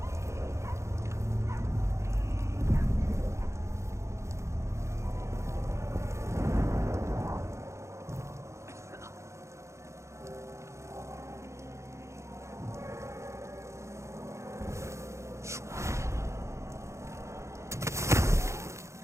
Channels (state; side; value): late; left; 0.14 ms